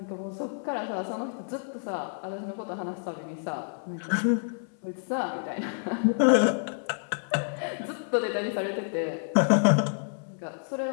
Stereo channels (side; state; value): right; silent; 59 dB below the other